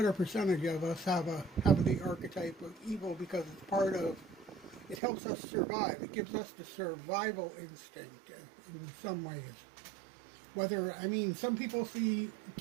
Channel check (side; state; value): left; drops out; at 5.0 s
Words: percentage of us have the archetype of evil because it's part of It helps us survive. It gives us the survival instinct in some ways. Some people see